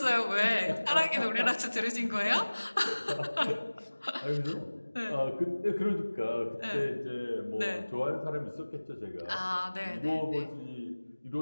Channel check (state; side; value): inverted; both; correlation -1.00